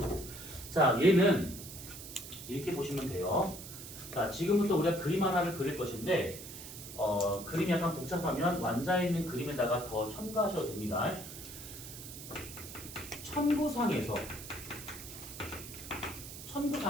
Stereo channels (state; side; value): noise; right; hiss, 12 dB below the sound